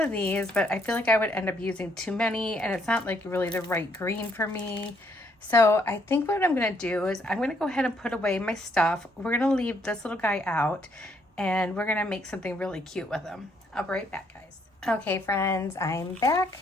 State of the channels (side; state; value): both; normal; correlation 0.70